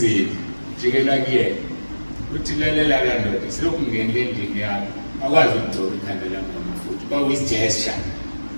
jikela kuyena. Uthi lalela kandoda silokhu ngenile endlini yakho. Akwazi ukugcoba ikhanda lami ngamafutha. Kwakuyisgesture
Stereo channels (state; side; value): inverted; both; correlation -1.00